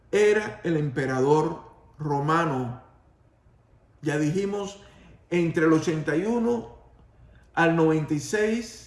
era el emperador romano, ya dijimos, entre el 81 al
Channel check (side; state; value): both; identical; correlation 1.00